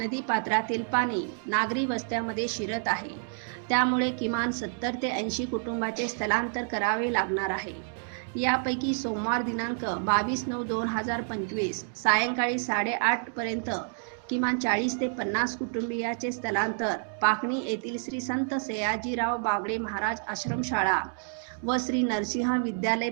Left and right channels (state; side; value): silent; left; 59 dB below the other